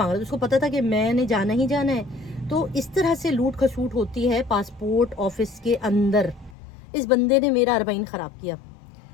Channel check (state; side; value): drops out; right; at 6.6 s